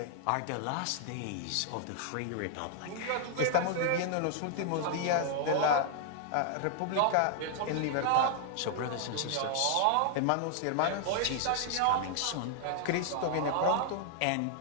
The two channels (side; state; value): both; different; correlation -0.01